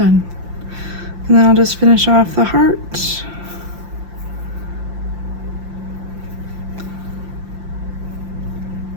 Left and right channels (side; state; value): left; late; 5.8 ms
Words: And then I'll just finish off the heart.